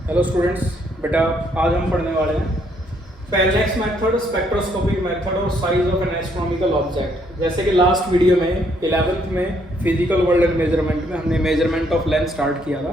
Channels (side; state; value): both; normal; correlation 0.70